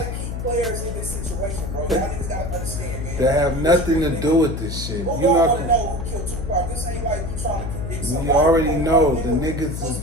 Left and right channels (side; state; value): left; noise; hum, 5 dB below the sound